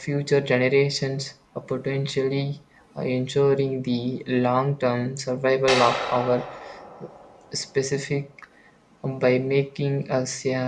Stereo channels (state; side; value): identical; both; correlation 1.00